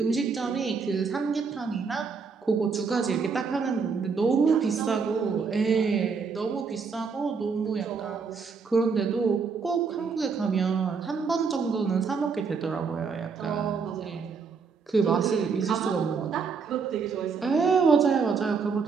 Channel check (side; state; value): left; quieter; 5.4 dB